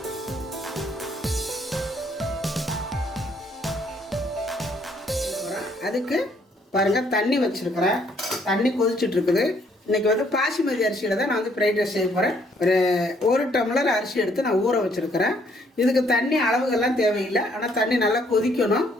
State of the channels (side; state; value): both; normal; correlation 0.66